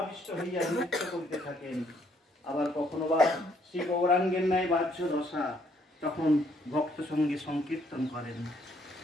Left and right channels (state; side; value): normal; both; correlation 0.67